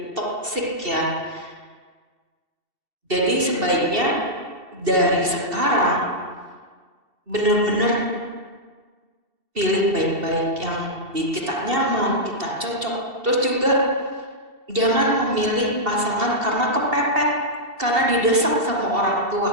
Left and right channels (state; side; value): late; left; 2.7 ms